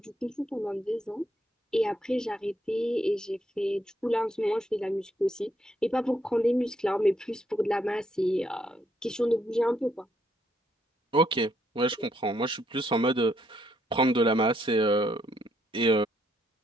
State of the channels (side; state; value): both; normal; correlation 0.73